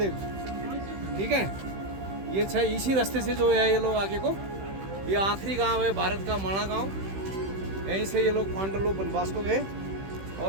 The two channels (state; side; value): late; left; 15 ms